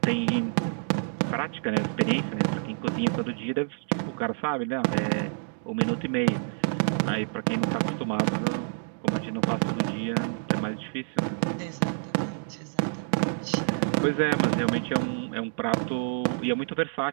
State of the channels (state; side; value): silent; left; digital silence